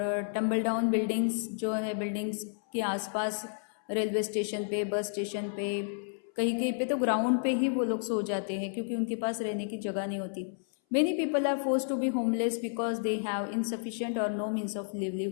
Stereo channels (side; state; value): right; silent; 57 dB below the other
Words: टम्बल डाउन बिल्डिंग्स जो है, बिल्डिंग्स के आसपास, रेलवे स्टेशन पे, बस स्टेशन पे, कहीं कहीं पे तो ग्राउंड पे ही वो लोग सो जाते हैं क्योंकि उनके पास रहने की जगह नहीं होती। Many people are forced to be homeless because they have insufficient और नो मीन्स ऑफ